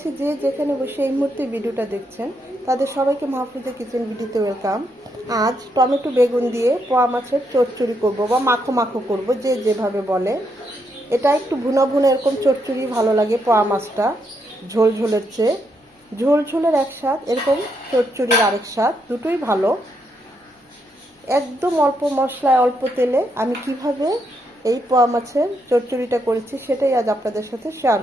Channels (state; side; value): normal; both; correlation 0.78